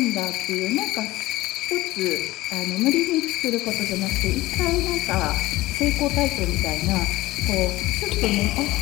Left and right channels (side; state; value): right; quieter; 18.1 dB